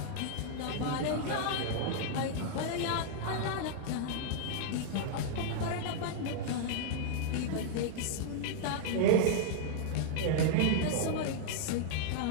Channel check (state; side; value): different; both; correlation -0.01